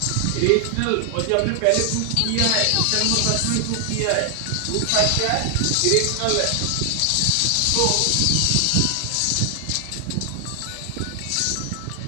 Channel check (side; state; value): both; different; correlation 0.00